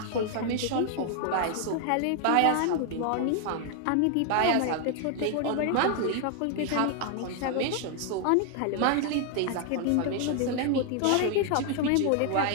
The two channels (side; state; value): both; different; correlation 0.00